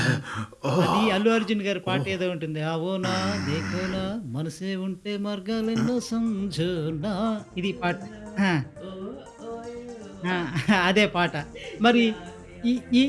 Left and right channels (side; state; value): both; identical; correlation 1.00